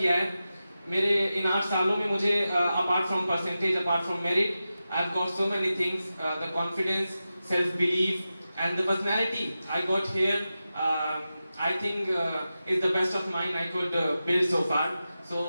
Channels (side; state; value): both; inverted; correlation -0.93